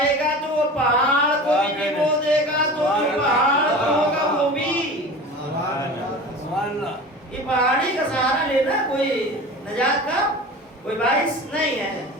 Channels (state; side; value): normal; both; correlation 0.35